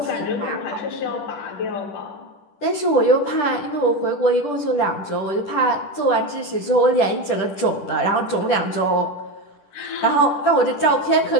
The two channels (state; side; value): late; right; 10 ms